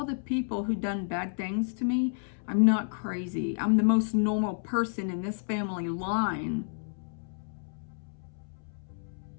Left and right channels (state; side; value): silent; right; 57 dB below the other